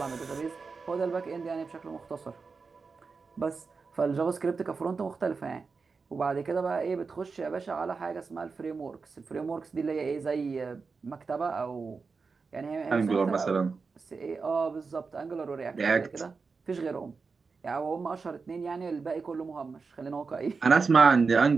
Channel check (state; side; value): quieter; left; 4.7 dB